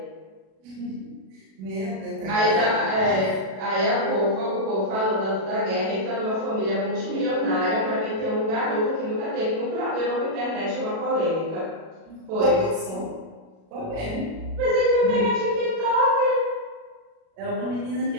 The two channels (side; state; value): left; late; 37 ms